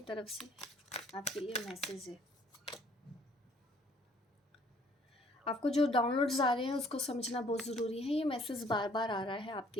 तरफ से आपके लिए मैसेज है। आपको जो डाउनलोड्स आ रहे हैं उसको समझना बहुत ज़रूरी है। ये मैसेज बार बार आ रहा है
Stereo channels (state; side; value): normal; both; correlation 0.60